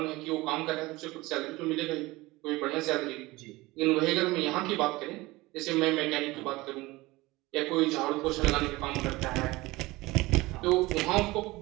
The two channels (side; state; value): left; quieter; 20.6 dB